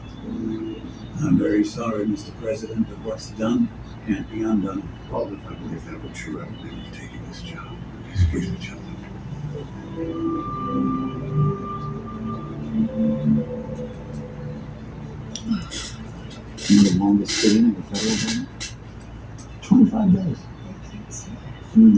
I'm very sorry, Mr. President, but what's done can't be undone. Well, if I believe that were true, I would never have taken this job. Excuse me, gentlemen. You're the longest staying in the federal government? 25 days. Doing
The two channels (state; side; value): identical; both; correlation 1.00